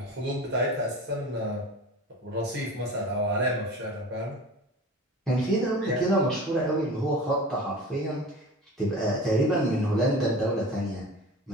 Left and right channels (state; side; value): normal; both; correlation 0.36